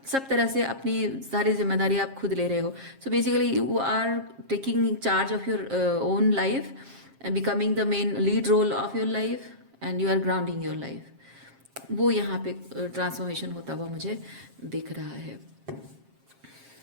तरह से अपनी सारी जिम्मेदारी आप खुद ले रहे हो। So basically you are taking charge of your own life and becoming the main lead role of your life and you are grounding your life। वो यहाँ पे ट्रांसफॉर्मेशन होता हुआ मुझे दिख रहा है।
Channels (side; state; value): left; late; 7.5 ms